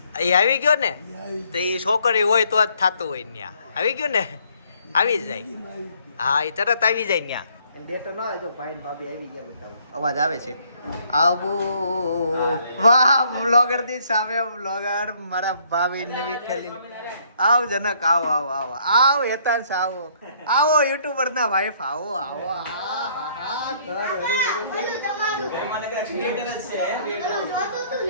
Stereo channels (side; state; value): both; inverted; correlation -0.65